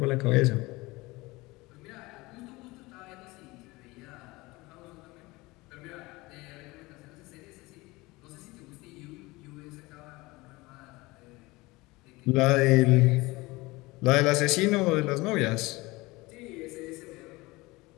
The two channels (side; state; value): right; quieter; 22.0 dB